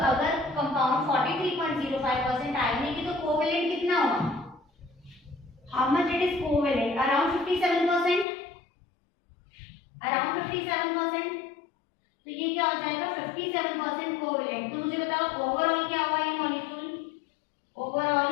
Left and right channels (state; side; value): drops out; right; at 8.2 s